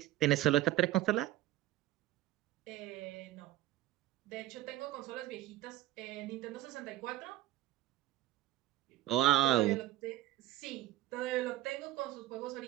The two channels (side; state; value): left; quieter; 14.5 dB